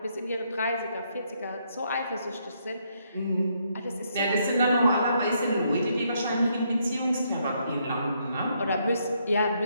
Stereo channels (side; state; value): both; inverted; correlation -0.74